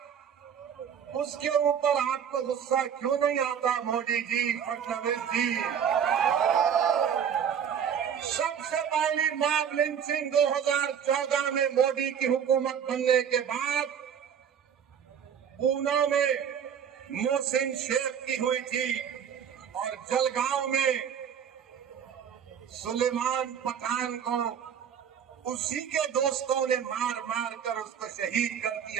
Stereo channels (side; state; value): left; quieter; 8.2 dB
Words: उसके ऊपर आपको गुस्सा क्यों नहीं आता मोदी जी, फडणवीस जी? सबसे पहली मॉब लिंचिंग 2014 में मोदी की हुकूमत बनने के बाद पूना में मोहसिन शेख की हुई थी और जलगांव में सुलेमान पठान को उसी के दोस्तों ने मार मार कर उसको शहीद कर